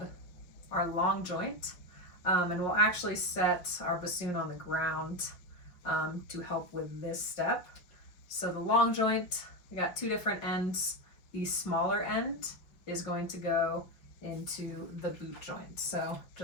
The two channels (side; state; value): right; late; 5.4 ms